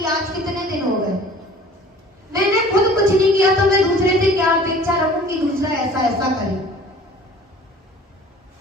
आज कितने दिन हो गए, मैंने खुद कुछ नहीं किया तो मैं दूसरे से क्या अपेक्षा रखूं कि दूसरा ऐसा ऐसा करे।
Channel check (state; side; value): normal; both; correlation 0.47